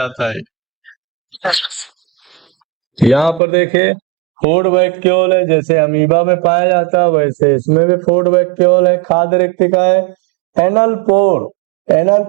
है। यहाँ पर देखिए फूड वैक्यूल है, जैसे अमीबा में पाया जाता है वैसे इसमें भी फूड वैक्यूल है। खाद्य रिक्तिका है। एनल पोर, एनल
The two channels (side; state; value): left; drops out; at 3.4 s